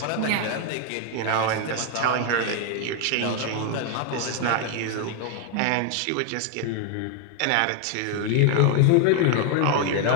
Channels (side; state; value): both; different; correlation 0.01